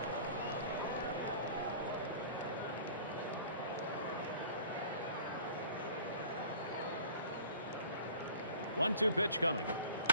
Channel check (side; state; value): both; inverted; correlation -0.45